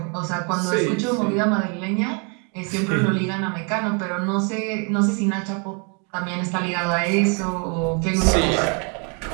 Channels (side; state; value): left; quieter; 36.3 dB